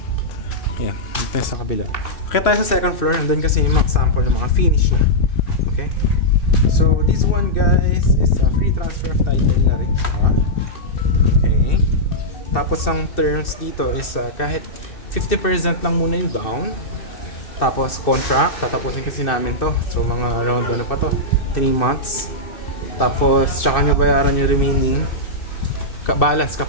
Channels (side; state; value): right; late; 2.6 ms